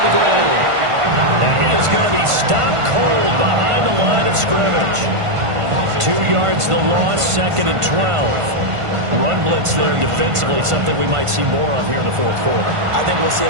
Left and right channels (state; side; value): late; left; 1.5 ms